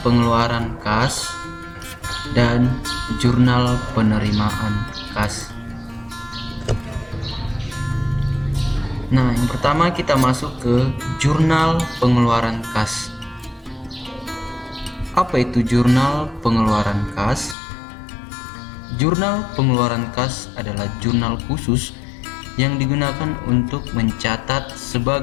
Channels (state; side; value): drops out; right; at 17.6 s